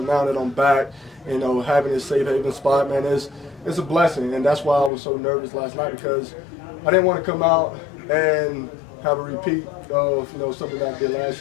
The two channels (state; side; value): drops out; right; at 4.9 s